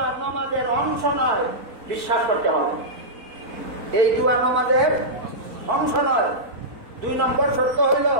নামাজের অংশ নয়, বিশ্বাস করতে হবে। এই দোয়া নামাজের অংশ নয়। 2 নম্বর শর্ত হইল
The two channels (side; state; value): left; late; 4.5 ms